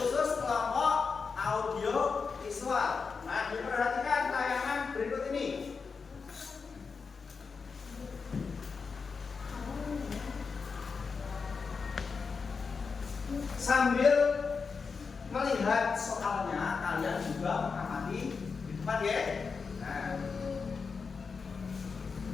kelompok audio visual. Nah, diperhatikan tayangan berikut ini. Sambil melihat soalnya, kalian juga mengamati di depan ya. Nah.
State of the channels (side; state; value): right; quieter; 5.1 dB